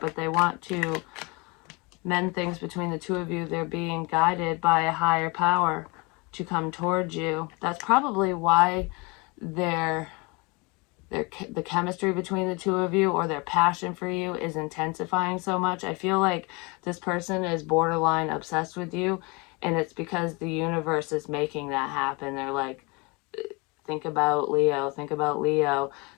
they want to mend things between the two of you. They're being guided by a higher power to come towards you. That's probably why the chemistry between the two of you, or their passion for you, is intensifying so much. I feel like this person is borderline obsessed with you, and it's because the universe is making that happen. They're like, think about Leo, think about Leo.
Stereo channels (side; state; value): right; quieter; 28.2 dB